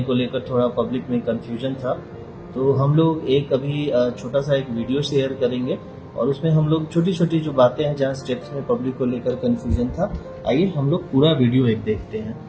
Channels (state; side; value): identical; both; correlation 1.00